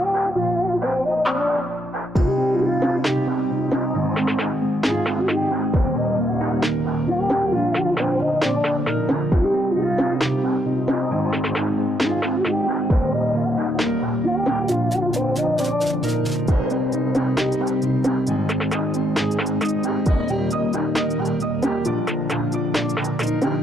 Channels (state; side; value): normal; both; correlation 0.76